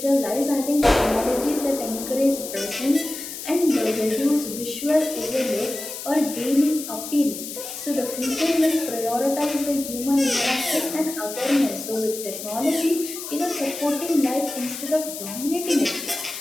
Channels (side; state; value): left; noise; hiss, 9 dB below the sound